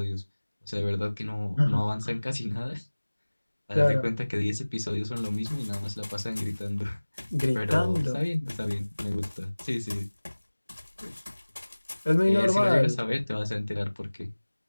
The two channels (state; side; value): inverted; both; correlation -1.00